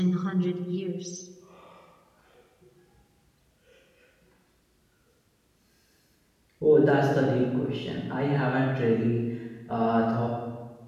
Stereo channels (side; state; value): both; identical; correlation 1.00